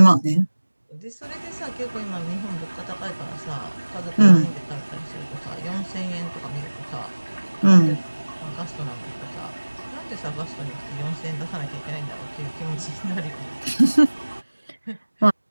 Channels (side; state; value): both; inverted; correlation -1.00